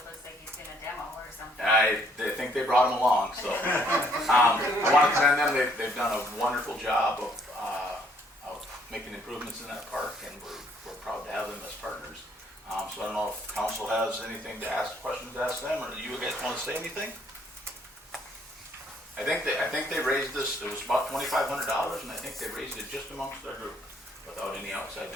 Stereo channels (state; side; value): normal; both; correlation 0.66